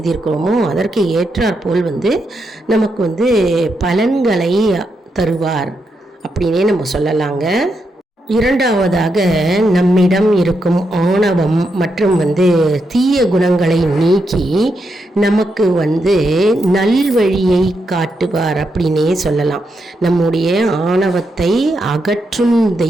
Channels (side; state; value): both; normal; correlation 0.83